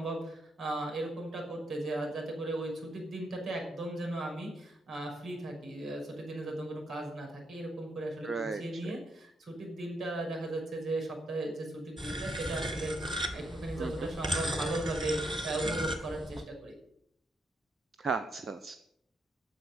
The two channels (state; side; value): normal; both; correlation 0.78